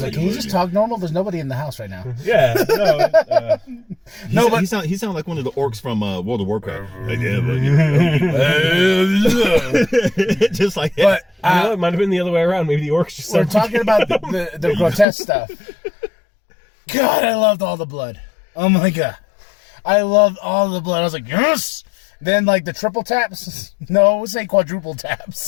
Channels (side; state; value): right; drops out; at 15.1 s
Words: like, can you just talk normal? There's nobody in the house right now. Yeah, no. He sound like one of the orcs from World of Warcraft. Just like that. But it might have been the other way around. Maybe the orcs just. We're talking about the grotesque stuff. God, I loved all the blood. Oh my god, I loved all the blood. I was like, yes. Then, like, the triple taps? No, we'll say quadruple